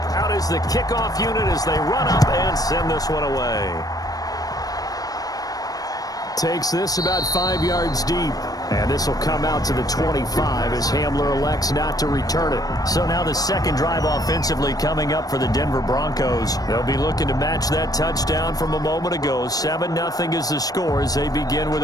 Out is the kickoff unit as they run up and send this one away. Takes this about 5 yards deep. And this will come out to the 25 as Hamler elects not to return it. So now the second drive offensively coming up for the Denver Broncos. They'll be looking to match that touchdown from a moment ago. 7-0 is the score as they begin with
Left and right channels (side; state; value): right; late; 0.18 ms